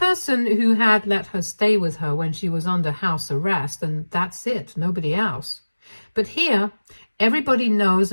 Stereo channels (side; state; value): both; inverted; correlation -1.00